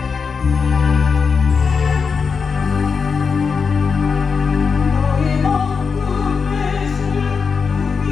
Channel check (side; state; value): right; quieter; 5.5 dB